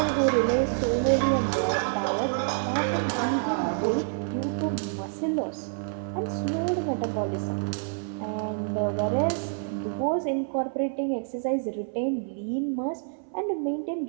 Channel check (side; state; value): left; silent; 60 dB below the other